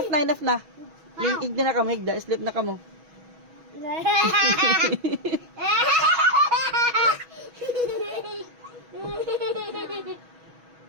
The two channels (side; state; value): left; late; 6.2 ms